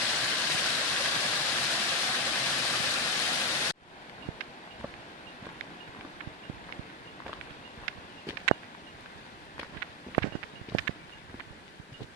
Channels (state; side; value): normal; both; correlation 0.06